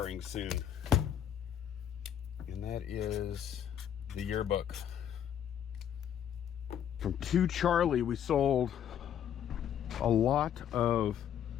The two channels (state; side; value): quieter; right; 9.6 dB